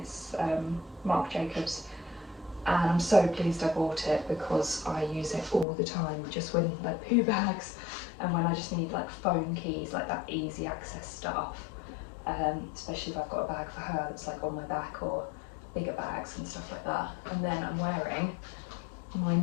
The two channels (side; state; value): right; drops out; at 5.7 s